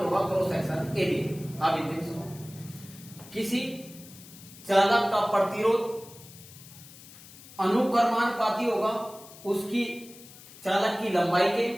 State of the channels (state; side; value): noise; left; hiss, 19 dB below the sound